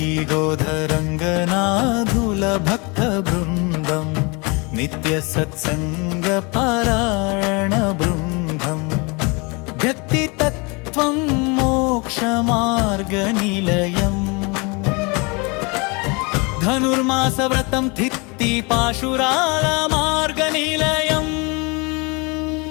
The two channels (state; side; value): quieter; right; 29.2 dB